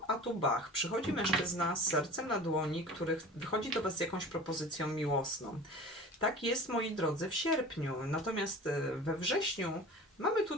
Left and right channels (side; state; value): both; normal; correlation 0.38